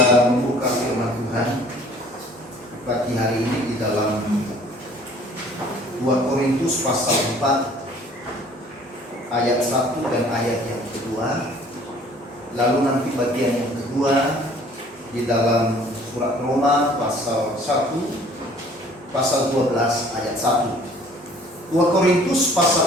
membuka firman Tuhan pagi hari ini di dalam 2 Korintus pasal 4 ayat 1 dan ayat yang kedua. Lalu nanti bagian yang kedua di dalam surat Roma pasal 1 pasal 12 ayat 1. 2 Korintus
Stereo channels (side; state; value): both; normal; correlation 0.54